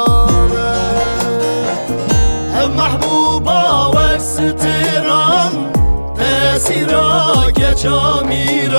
هم محبوبا و ستران تأثیرا گچا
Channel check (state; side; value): inverted; both; correlation -1.00